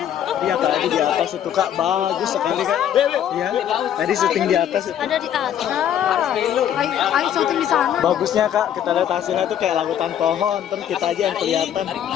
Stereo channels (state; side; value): quieter; right; 10.0 dB